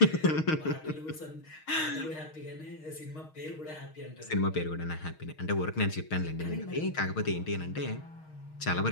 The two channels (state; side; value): late; right; 6.4 ms